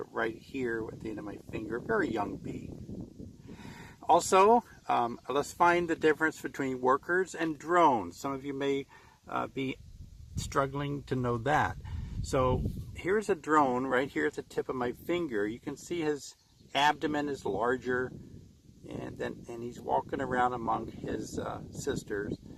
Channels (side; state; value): both; identical; correlation 1.00